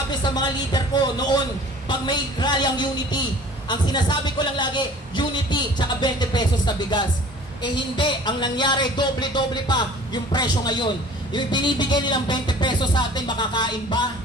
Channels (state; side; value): normal; both; correlation 0.47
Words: sa mga leader ko noon pag may rally ang Unity. Ang sinasabi ko lang lagi, Unity, tsaka 20 pesos na bigas. Eh hindi, ang nangyari, doble-doble pa yung presyo ngayon. Yung binibigay nilang 20 pesos sa atin, makakain ba?